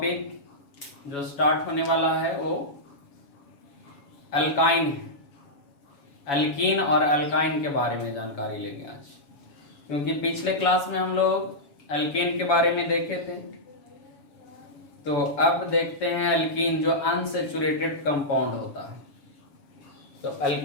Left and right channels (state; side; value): late; right; 7.1 ms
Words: जो स्टार्ट होने वाला है वो अल्काइन है। अल्कीन और अल्काइन के बारे में जानकारी लेंगे आज, क्योंकि पिछले क्लास में हम लोग अल्केन के बारे में देखे थे। तो अब देखते हैं अल्कीन जो अनसैचुरेटेड कंपाउंड होता है। तो